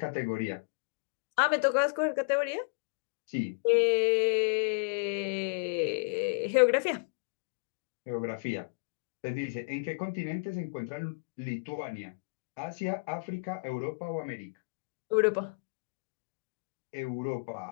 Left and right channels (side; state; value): right; quieter; 37.8 dB